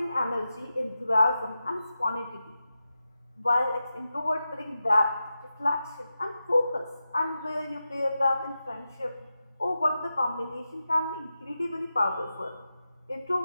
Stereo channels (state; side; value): inverted; both; correlation -0.91